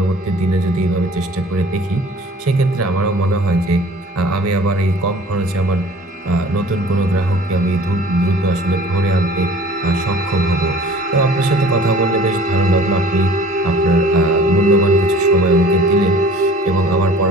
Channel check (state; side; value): normal; both; correlation 0.49